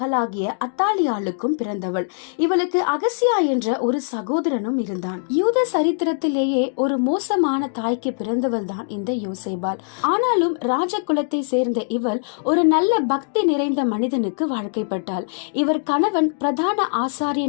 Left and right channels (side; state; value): right; silent; digital silence